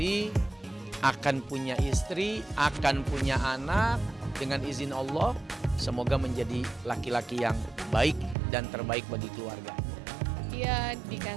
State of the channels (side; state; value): left; drops out; at 8.3 s